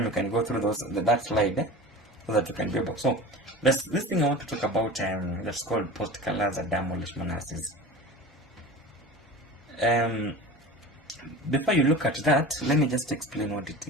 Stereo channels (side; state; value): both; normal; correlation 0.34